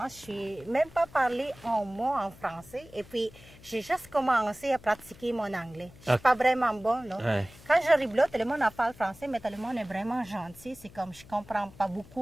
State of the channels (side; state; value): left; noise; hum, 21 dB below the sound